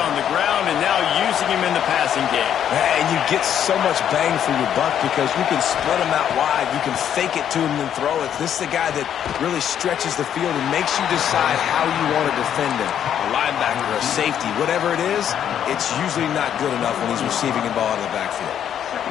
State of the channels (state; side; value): quieter; right; 9.5 dB